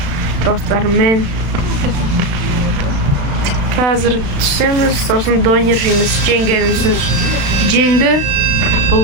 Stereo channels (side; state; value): left; late; 36 ms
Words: do'stlarim hozir tushamiz, so'ng don yeymiz, jangamiz. Jangda bu